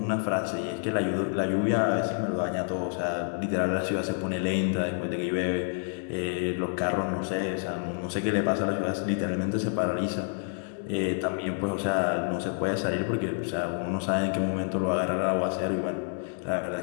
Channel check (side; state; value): right; silent; 59 dB below the other